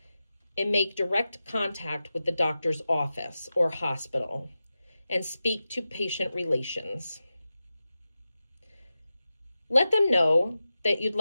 and make direct contact with the doctor's office or hospital and speak to patient relations. Let them know that you'd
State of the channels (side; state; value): both; inverted; correlation -0.93